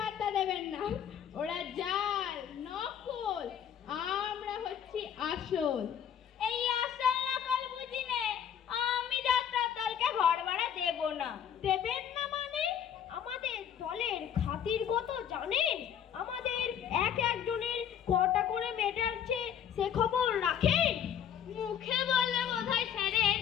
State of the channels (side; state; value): right; quieter; 9.1 dB